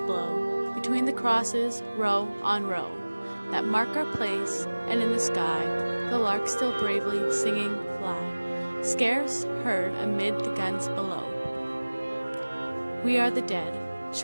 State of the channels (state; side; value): inverted; both; correlation -1.00